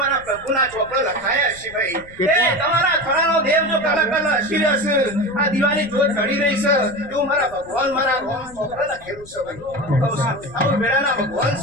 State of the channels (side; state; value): left; noise; rumble, 21 dB below the sound